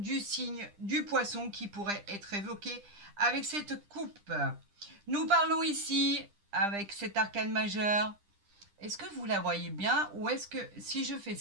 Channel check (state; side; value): late; left; 10 ms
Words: signe du poisson qui pourrait être évoqué avec cette coupe. Nous parlons ici avec cet arcane majeur. Est-ce que vous la voyez bien ou est-ce que si je fais